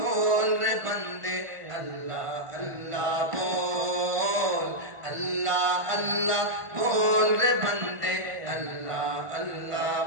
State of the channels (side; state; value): left; late; 1.5 ms